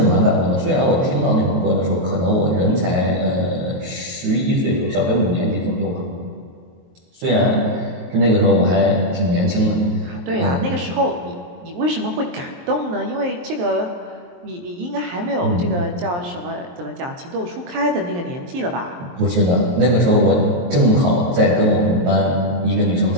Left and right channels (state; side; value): late; left; 23 ms